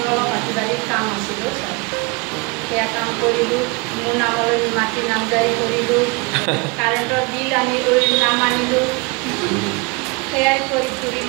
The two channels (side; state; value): left; quieter; 28.2 dB